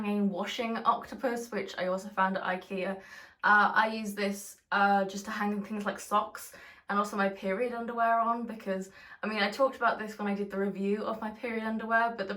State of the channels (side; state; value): both; identical; correlation 1.00